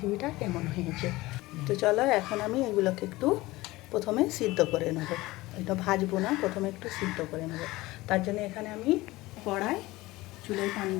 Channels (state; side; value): quieter; right; 19.5 dB